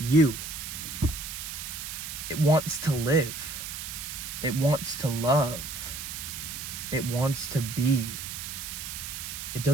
It wants to live. It wants to love. It wants to be. It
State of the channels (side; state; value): right; noise; hiss, 7 dB below the sound